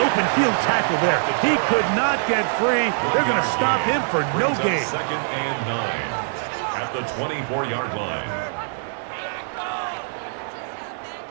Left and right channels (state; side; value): silent; left; 59 dB below the other